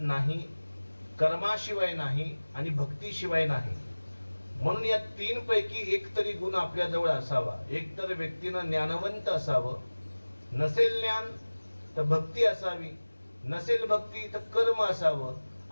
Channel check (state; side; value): inverted; both; correlation -1.00